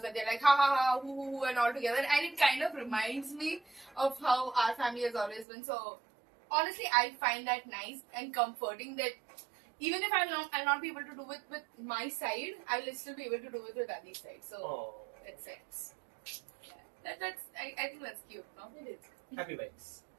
that they're like ha ha ha hoo and all together, and it kind of reminds me of how our family has always been. So honestly, I find that nice and comforting that even if I'll not be able to do it with my side, I'll still be able to do it with Adi's side. So Oh, that's sense. Yeah. I think that's cute, no? It is. happy vibes.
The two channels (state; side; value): drops out; left; at 5.5 s